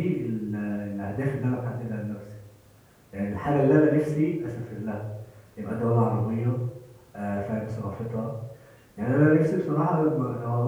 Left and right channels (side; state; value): both; identical; correlation 1.00